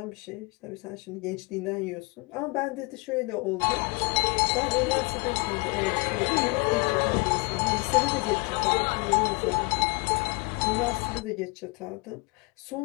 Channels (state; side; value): quieter; right; 28.6 dB